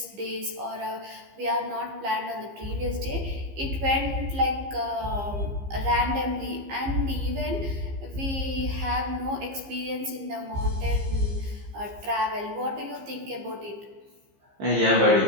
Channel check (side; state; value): left; late; 15 ms